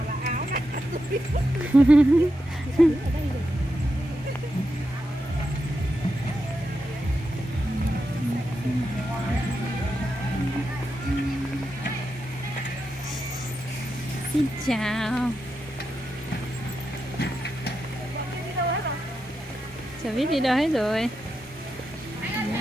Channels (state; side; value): normal; both; correlation 0.87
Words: xin chào. Chả biết đi đâu hết rồi.